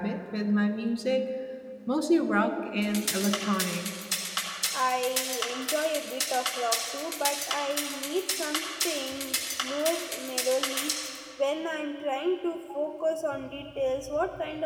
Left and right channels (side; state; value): both; identical; correlation 1.00